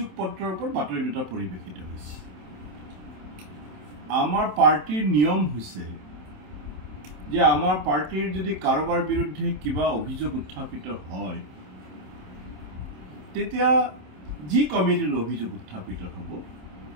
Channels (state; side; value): late; left; 27 ms